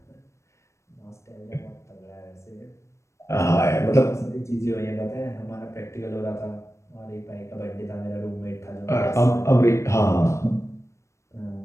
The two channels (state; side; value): late; right; 0.14 ms